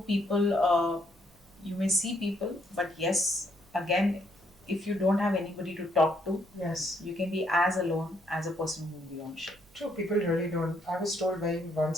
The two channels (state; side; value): noise; right; hum, 30 dB below the sound